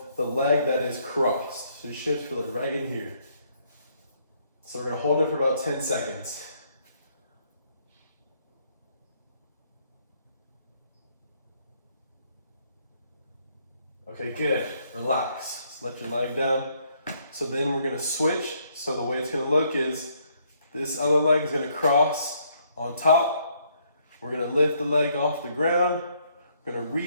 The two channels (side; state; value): both; inverted; correlation -0.70